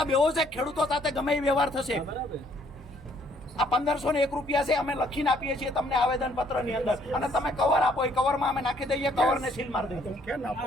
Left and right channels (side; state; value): both; normal; correlation 0.65